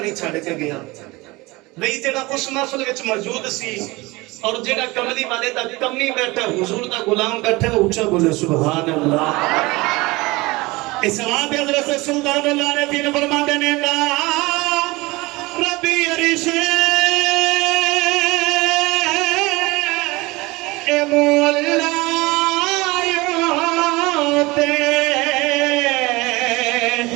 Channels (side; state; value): left; quieter; 22.3 dB